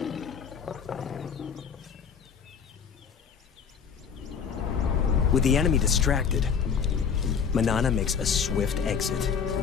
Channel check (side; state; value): right; quieter; 6.7 dB